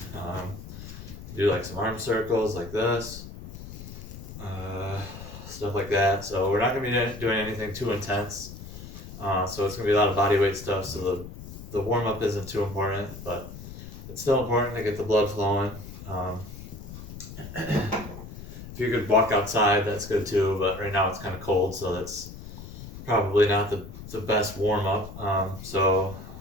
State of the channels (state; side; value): noise; left; rumble, 13 dB below the sound